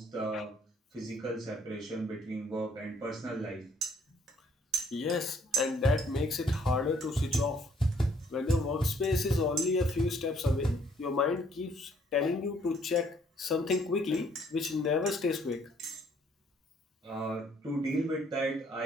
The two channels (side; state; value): both; normal; correlation 0.64